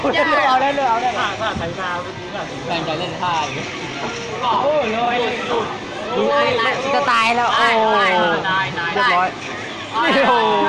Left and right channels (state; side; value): identical; both; correlation 1.00